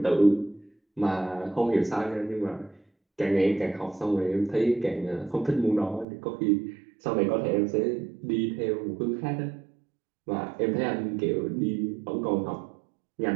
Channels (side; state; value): left; drops out; at 6.1 s